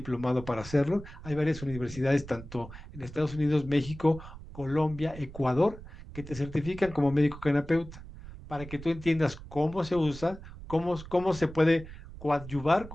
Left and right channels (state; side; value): noise; right; rumble, 14 dB below the sound